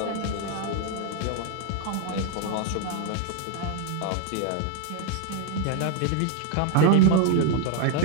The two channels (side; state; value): both; different; correlation 0.00